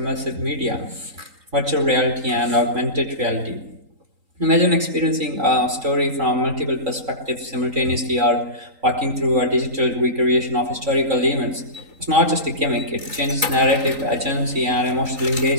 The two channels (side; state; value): left; late; 3.8 ms